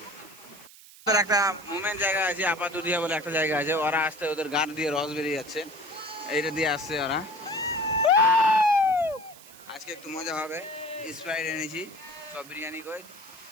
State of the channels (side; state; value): right; noise; hiss, 21 dB below the sound